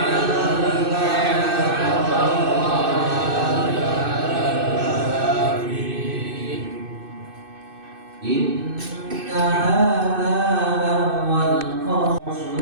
إن هذا لهو القصص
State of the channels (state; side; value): late; left; 2.6 ms